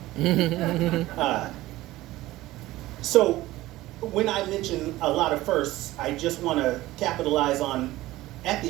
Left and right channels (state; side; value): quieter; left; 17.2 dB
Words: So when I mention a lot of firsts, I just want to capitalize on, at